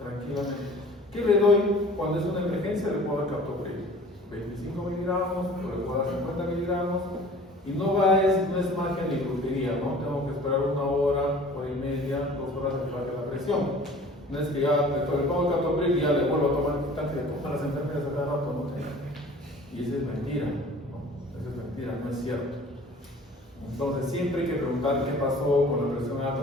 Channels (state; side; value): normal; both; correlation 0.47